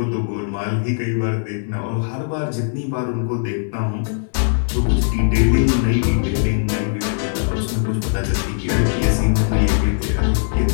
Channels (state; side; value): silent; right; 64 dB below the other